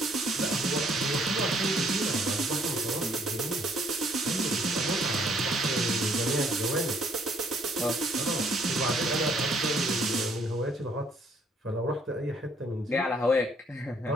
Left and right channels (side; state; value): both; normal; correlation 0.65